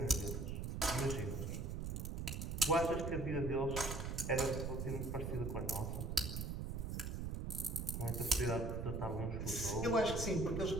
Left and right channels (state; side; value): noise; right; rumble, 3 dB below the sound